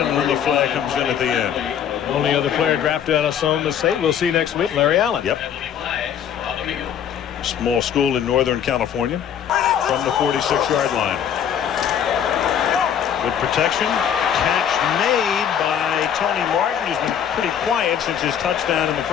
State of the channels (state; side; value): quieter; right; 8.8 dB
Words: an early flag comes in at the end. Only other player drafted out of Sonoma State. We'll see next week, Larry Allen. Yep. Small school in Northern California. From the 46-yard line. Good protection. Catch made by Tony Martin, who's been pretty quiet since his touchdown in the